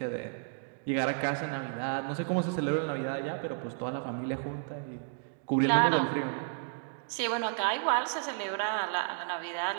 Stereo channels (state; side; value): silent; left; digital silence